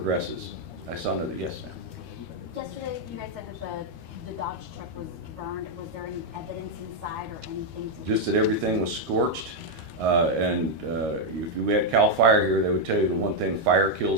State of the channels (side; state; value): left; late; 13 ms